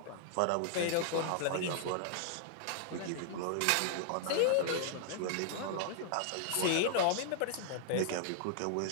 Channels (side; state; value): both; different; correlation -0.01